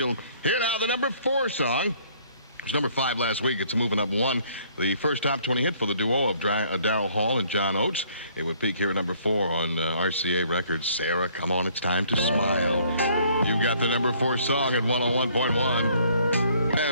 Here now, the number 4 song. It was number 5 last week. It's moving up 1. The first top 20 hit for the duo of Darryl Hall and John Oates. It would peak here at number 4 on RCA Records. Sarah, come on, it's time to smile. You got the number 4 song at 101.1.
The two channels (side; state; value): both; inverted; correlation -0.61